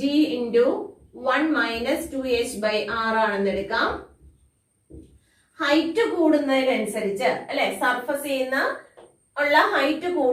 into 1 minus 2h by r ആണെന്ന് എടുക്കാം. ഹൈറ്റ് കൂടുന്നതിനനുസരിച്ച് അല്ലെ, സർഫസ് ചെയ്യുന്ന ഉള്ള ഹൈറ്റ്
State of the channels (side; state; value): both; identical; correlation 1.00